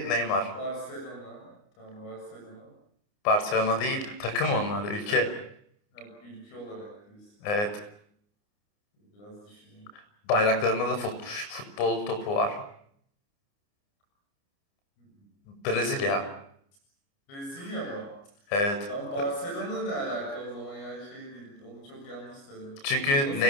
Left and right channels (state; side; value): late; right; 29 ms